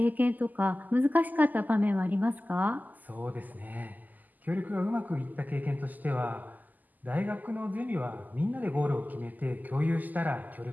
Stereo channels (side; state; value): left; late; 0.083 ms